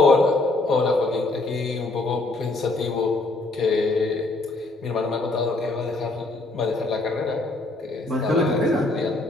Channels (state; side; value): quieter; right; 3.0 dB